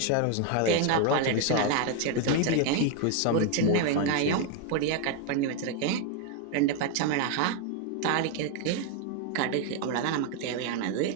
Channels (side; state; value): both; different; correlation 0.01